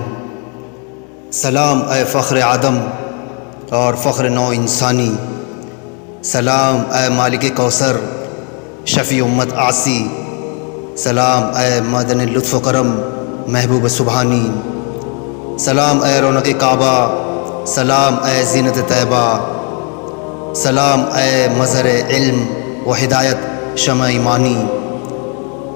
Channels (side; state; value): right; quieter; 37.4 dB